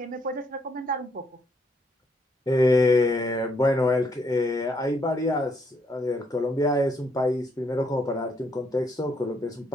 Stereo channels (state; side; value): normal; both; correlation 0.72